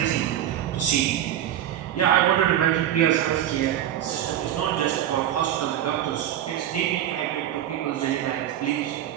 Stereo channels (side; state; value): left; quieter; 11.3 dB